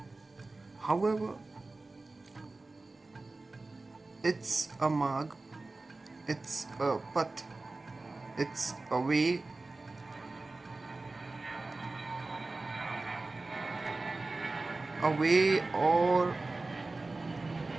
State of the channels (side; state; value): left; quieter; 3.3 dB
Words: However, it's a marg, it's a path, it's a way, or